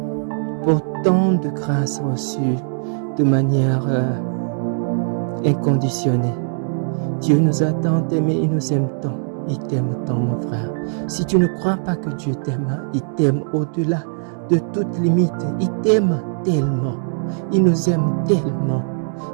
pour tant de grâces reçues de manière inconditionnée. Dieu nous a tant aimés, il nous aime tant. Il t'aime tant, mon frère. Si tu ne crois pas que Dieu t'aime, il t'aime au-delà de toute limite. Il t'aime tellement. Il nous aime tellement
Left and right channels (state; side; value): silent; left; digital silence